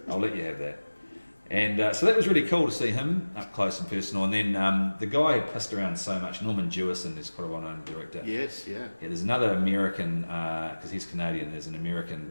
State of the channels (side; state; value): both; inverted; correlation -1.00